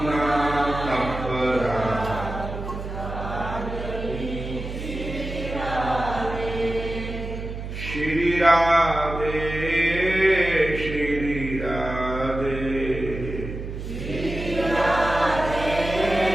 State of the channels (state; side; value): noise; right; hum, 7 dB below the sound